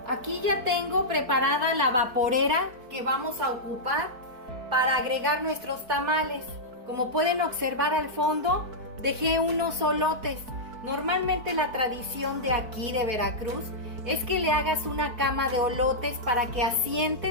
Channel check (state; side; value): late; left; 4.6 ms